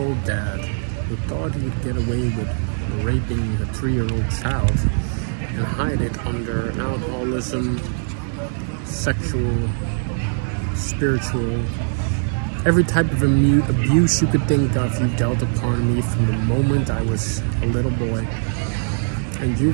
dad who thought he would get away with raping a 3-year-old child and hide it under alcoholism, sexual, spiritual, every type of abuse you could think of, you dealt upon me from the moment I was a little boy. And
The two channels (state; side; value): silent; left; digital silence